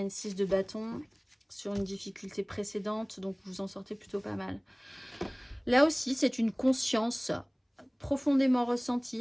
une 6 de bâton sur une difficulté précédente, donc vous en sortez plutôt pas mal. Là aussi, c'est une conscience profondément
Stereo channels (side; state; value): both; identical; correlation 1.00